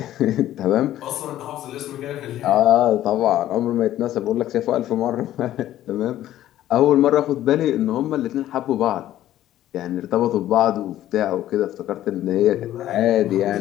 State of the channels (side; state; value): right; quieter; 13.1 dB